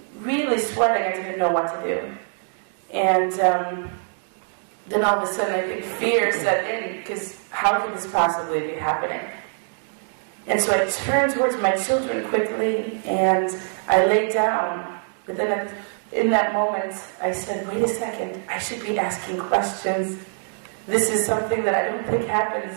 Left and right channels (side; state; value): left; silent; 63 dB below the other